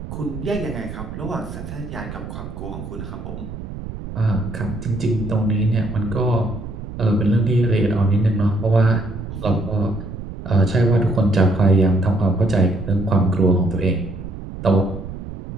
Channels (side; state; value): right; noise; rumble, 10 dB below the sound